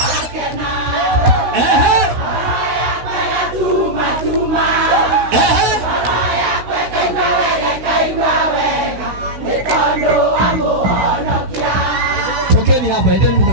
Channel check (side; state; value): left; late; 16 ms